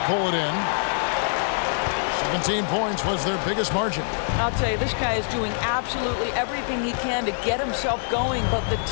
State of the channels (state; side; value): silent; right; digital silence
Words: pull it in. 17 points was their biggest margin. I'll tell you, this guy is doing absolutely everything he can to get himself going, but the